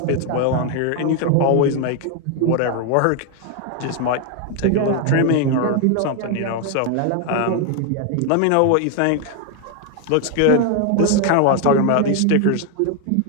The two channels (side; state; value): both; different; correlation 0.01